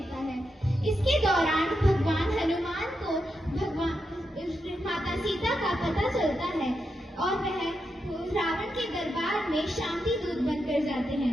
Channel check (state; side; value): normal; both; correlation 0.85